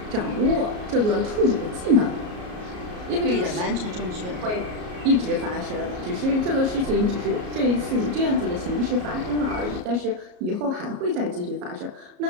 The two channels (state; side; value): late; left; 33 ms